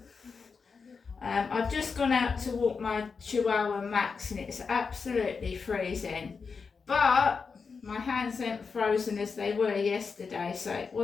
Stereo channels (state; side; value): quieter; right; 5.2 dB